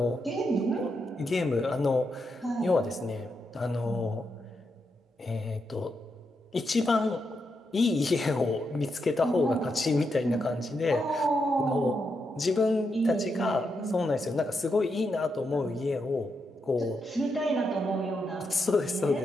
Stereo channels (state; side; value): normal; both; correlation 0.83